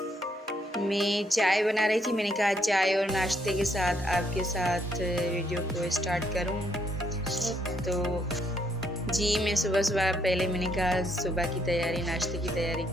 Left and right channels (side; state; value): both; normal; correlation 0.72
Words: मैं चाय बना रही थी, मैंने कहा चाय और नाश्ते के साथ आपके साथ वीडियो को स्टार्ट करूं। तो जी मैं सुबह पहले मैंने कहा सुबह की तैयारी, नाश्ते की तैयारी